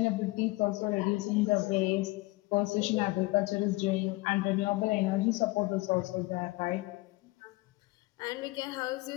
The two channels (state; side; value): quieter; right; 22.2 dB